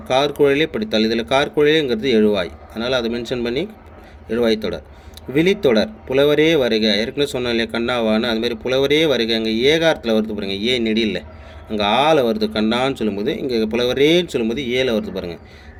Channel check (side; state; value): both; identical; correlation 1.00